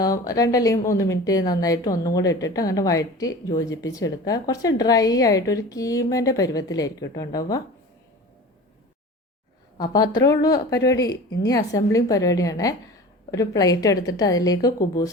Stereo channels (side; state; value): both; normal; correlation 0.37